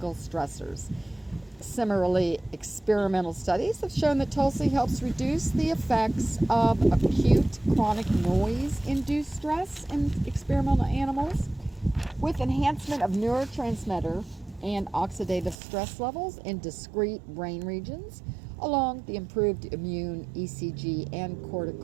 stressors. Similarly, experimental studies have shown that Tulsi helps reduce the effects of acute chronic noise-induced stress in experimental animals, with enhancement of neurotransmitter and oxidative stress levels in discrete brain regions, along the improved immune, ECG, and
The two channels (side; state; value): left; drops out; at 15.6 s